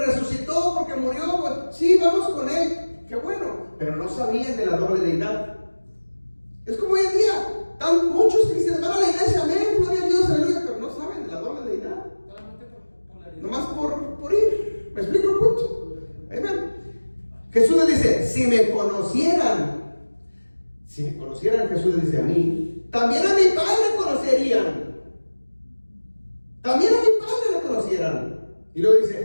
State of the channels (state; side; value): inverted; both; correlation -1.00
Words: resucitó, porque murió, pues, sí, vamos con él. Qué bueno. Pero no sabían de la doble deidad. Es como hoy en día. Muchos cristianos van a la iglesia, amén, gloria a Dios, aleluya, pero no saben de la doble deidad. Nomás por ir. ¿Me explico el punto? Amén. Jesús les dice: si me conocieran, Jesús les dice a mí, también a mi Padre conocerían. También a mi Padre lo conocieran. Y luego